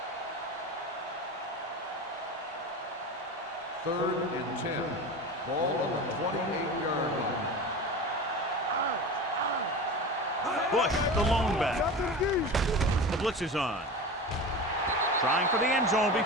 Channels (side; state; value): both; normal; correlation 0.29